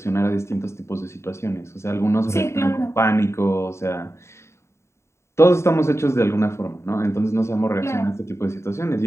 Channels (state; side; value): late; right; 0.13 ms